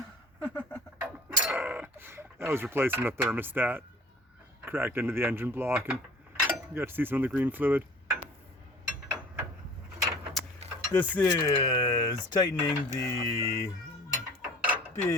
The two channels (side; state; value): both; normal; correlation 0.47